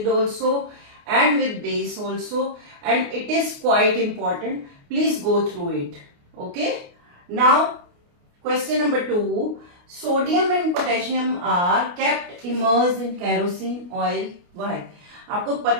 also and with base also, and it is quite important. Please go through it. Okay, now question number 2, sodium and potassium are kept immersed in kerosene oil. Why? आपको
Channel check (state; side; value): late; left; 29 ms